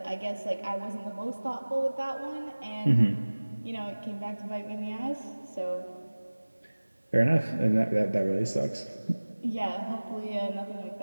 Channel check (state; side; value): inverted; both; correlation -1.00